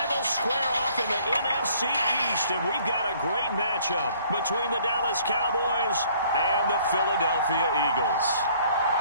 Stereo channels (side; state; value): both; inverted; correlation -0.59